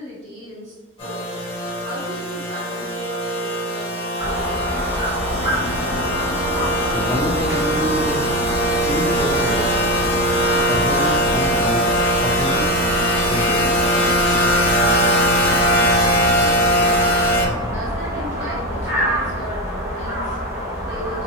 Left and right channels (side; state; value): both; normal; correlation 0.16